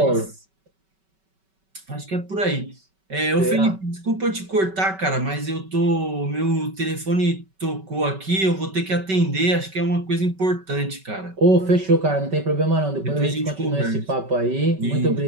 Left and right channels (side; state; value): left; late; 5.2 ms